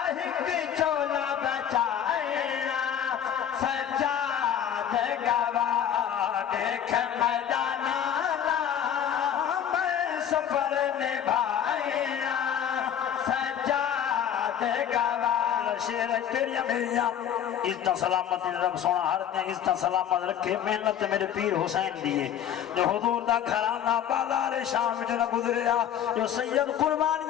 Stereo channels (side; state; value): right; quieter; 9.5 dB